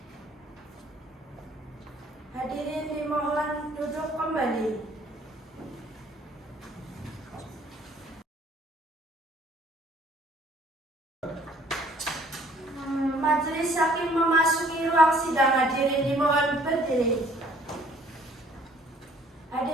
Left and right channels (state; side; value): normal; both; correlation 0.59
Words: Hadirin dimohon duduk kembali. Majelis hakim memasuki ruang sidang. Hadirin dimohon berdiri.